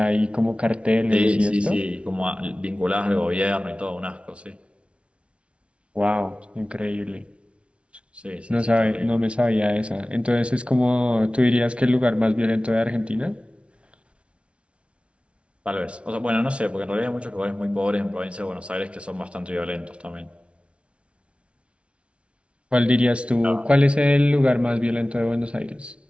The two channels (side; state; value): left; late; 0.060 ms